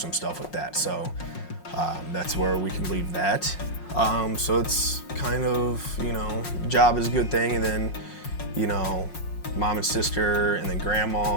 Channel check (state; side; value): late; right; 5.5 ms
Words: stuff with that. So that's where we can leave that. So it's kind of, job is a good thing, and then, mom and sister, and then